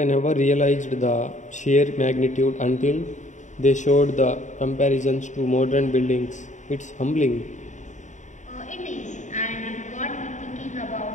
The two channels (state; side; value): late; right; 0.35 ms